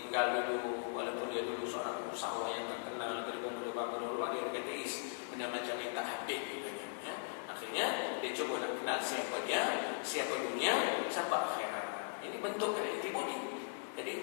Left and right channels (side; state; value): right; silent; digital silence